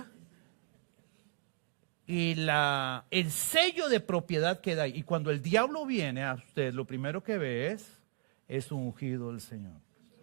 y el sello de propiedad queda ahí. Y cuando el diablo viene a usted, lo primero que ve es ungido del Señor.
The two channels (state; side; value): silent; left; digital silence